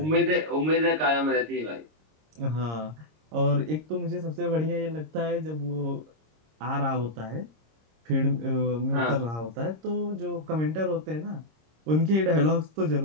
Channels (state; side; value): late; left; 26 ms